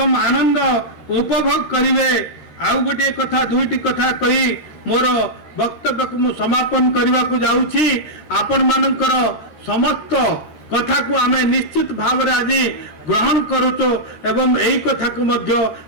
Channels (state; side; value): late; right; 13 ms